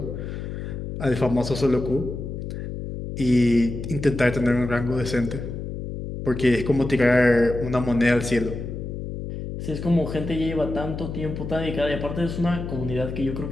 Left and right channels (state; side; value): noise; left; hum, 7 dB below the sound